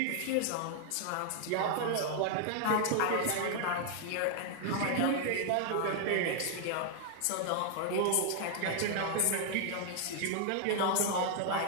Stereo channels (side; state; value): both; different; correlation 0.00